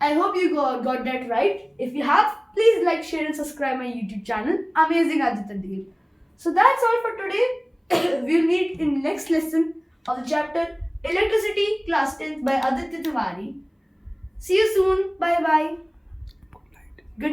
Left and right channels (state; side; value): identical; both; correlation 1.00